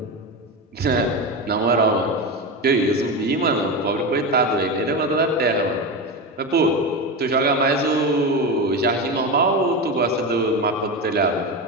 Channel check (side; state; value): both; normal; correlation 0.19